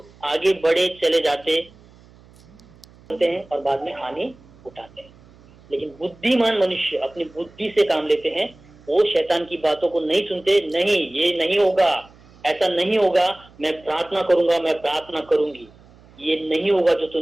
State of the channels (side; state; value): right; noise; hum, 26 dB below the sound